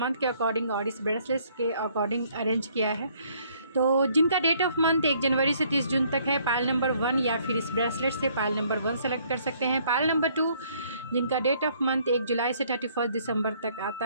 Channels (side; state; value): both; inverted; correlation -0.64